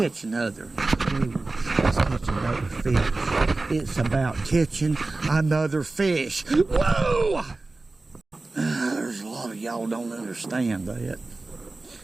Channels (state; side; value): quieter; left; 3.3 dB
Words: another. Let's catch another fish. It's about catching another fish. Whoa! There's a lot of y'all don't understand that.